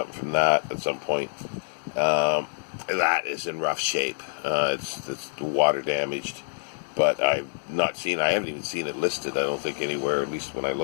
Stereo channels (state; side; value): silent; right; digital silence